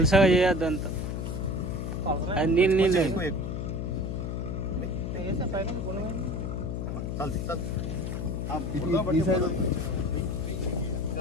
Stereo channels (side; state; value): left; noise; hum, 3 dB below the sound